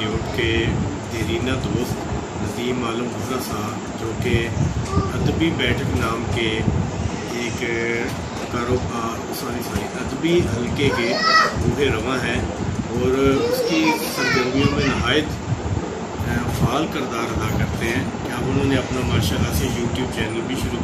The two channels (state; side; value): identical; both; correlation 1.00